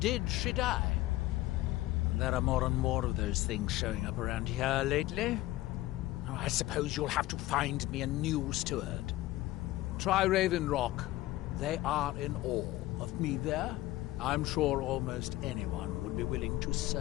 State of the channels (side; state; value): right; quieter; 16.9 dB